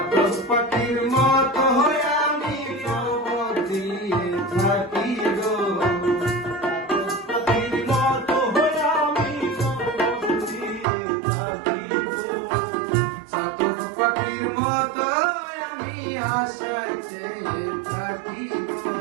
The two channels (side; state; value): left; drops out; at 10.9 s